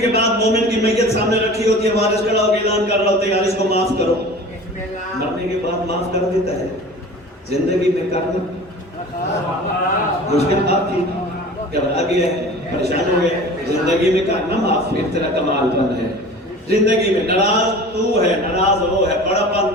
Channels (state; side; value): normal; both; correlation 0.40